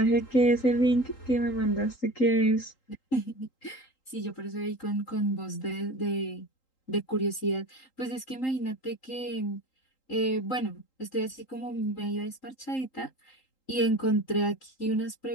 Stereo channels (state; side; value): late; right; 3.8 ms